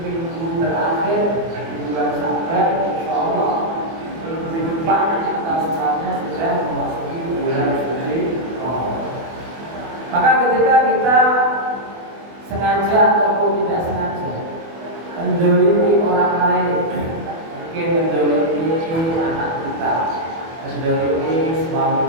terakhir di bulan Syawal. Insyaallah minggu depan kita semuanya sudah memasuki bulan suci Ramadan. Maka ketika kita sengaja ataupun tidak sengaja menzalimi orang lain, mungkin menzalimi anak kita, menzalimi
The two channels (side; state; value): left; late; 24 ms